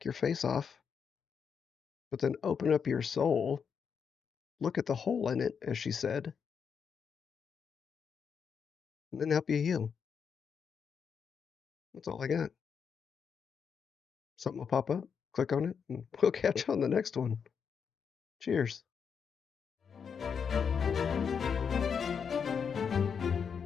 your face off, but then open up your soul, look at the hole in it, as she said, and then help you heal? That's all I got. Something will pop up, click on it, and we'll catch you on the next one. Cheers.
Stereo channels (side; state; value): right; quieter; 6.7 dB